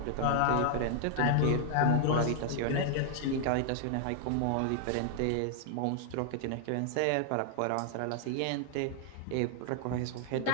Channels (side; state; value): both; different; correlation 0.00